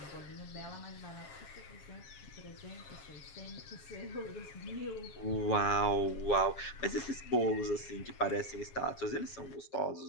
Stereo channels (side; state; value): right; late; 7.4 ms